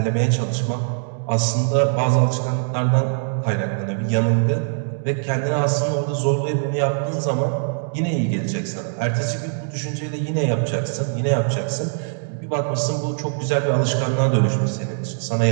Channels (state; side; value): silent; left; digital silence